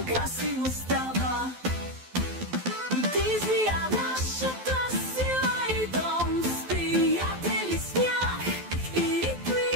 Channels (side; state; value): left; late; 12 ms